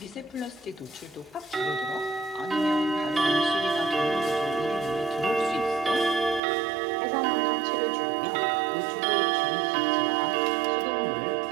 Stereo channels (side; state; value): left; drops out; at 6.4 s